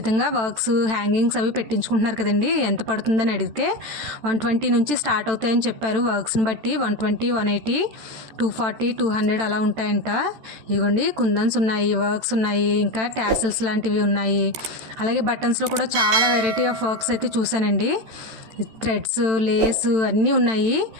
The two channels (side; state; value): left; late; 13 ms